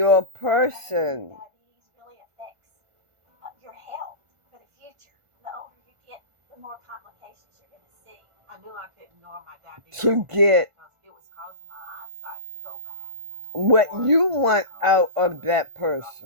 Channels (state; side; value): late; left; 1.4 ms